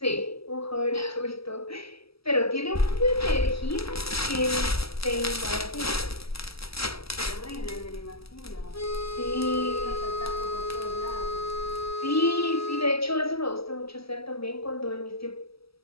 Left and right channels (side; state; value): right; late; 0.76 ms